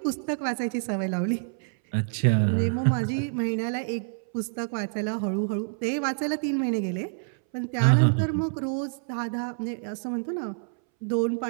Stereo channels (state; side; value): silent; left; 60 dB below the other